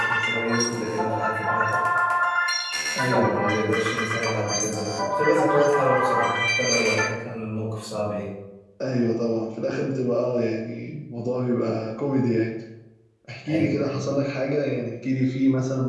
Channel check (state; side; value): identical; both; correlation 1.00